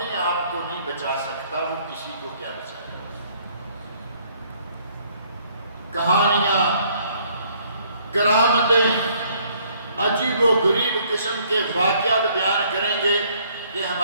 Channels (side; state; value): both; inverted; correlation -0.63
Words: آپ کو نہیں بچا سکتا وہ کسی کو کیا بچائے۔ کہانیاں، کرامتیں، عجیب و غریب قسم کے واقعات بیان کریں گے کہ